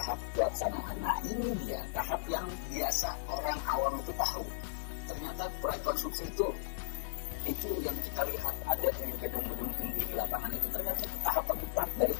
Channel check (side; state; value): right; silent; digital silence